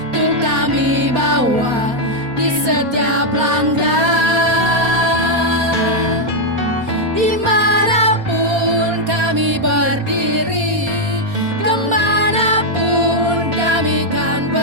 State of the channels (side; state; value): left; late; 4.2 ms